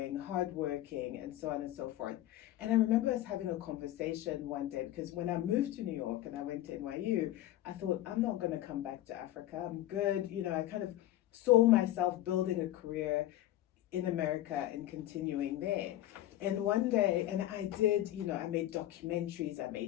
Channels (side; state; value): right; quieter; 14.2 dB